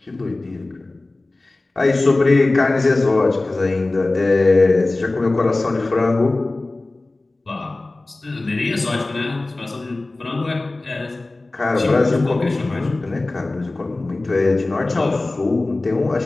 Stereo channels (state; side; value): quieter; right; 3.0 dB